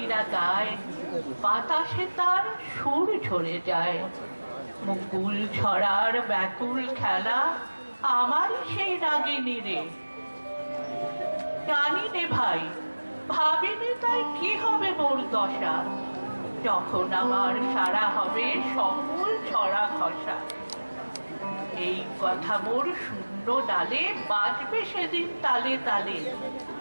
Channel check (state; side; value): inverted; both; correlation -1.00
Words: গায়, বাতাসে তার সুর ঝরে যায়। মুকুল ছড়ার ব্যাকুল খেলা আমার সেই রাগিনী রে। জানি নে ভাই, ভাবিনি তাই কি হবে মোর দশা, যখন আমার সারা হবে সকল ছড়া খসা। এই কথা মোর শূন্য ডালে বাজবে সেদিন তালে তালে।